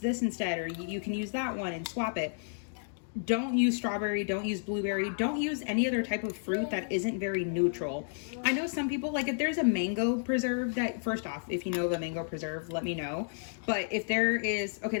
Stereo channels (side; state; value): right; silent; digital silence